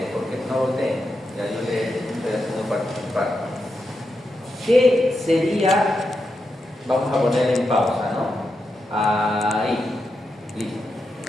porque no volteen, ya yo le estoy haciendo participar. ¿Qué sería? Vamos a poner en pausa, ¿no? Ahí, listo.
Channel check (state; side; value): normal; both; correlation 0.86